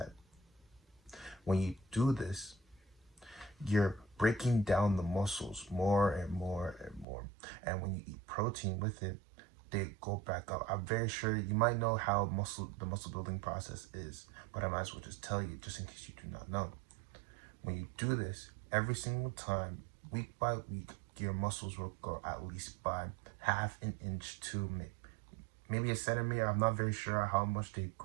When you do this, you're breaking down the muscles more and more and more. And when you eat protein with it, they go back up. I'm very sure you might know how the muscle building process is, but I might as well just tell you, just in case you do not know. When you do this, every single time, week by week, your muscles will grow at least by half an inch to maybe a centimeter. I'm not very sure how much they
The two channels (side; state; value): left; drops out; at 7.1 s